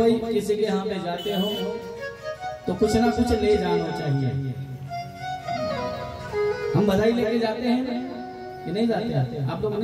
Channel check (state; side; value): identical; both; correlation 1.00